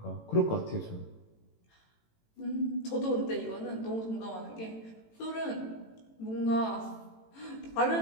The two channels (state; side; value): late; right; 18 ms